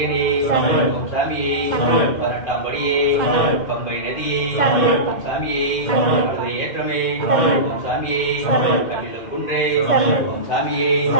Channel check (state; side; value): late; right; 2.0 ms